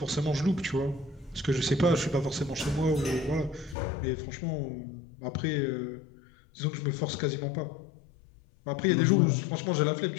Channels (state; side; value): drops out; right; at 3.8 s